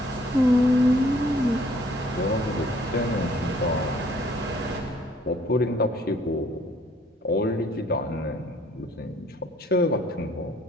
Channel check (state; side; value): normal; both; correlation 0.60